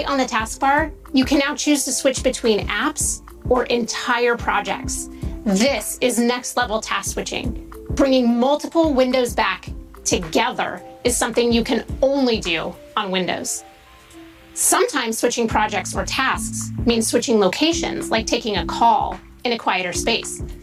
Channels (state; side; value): identical; both; correlation 1.00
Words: on the taskbar, you can now choose to switch between apps or entire projects. This is next level task switching. Bringing multiple windows back together is something you can only do on Windows. Sometimes switching projects or tasks means switching locations, like taking a call in a quieter space.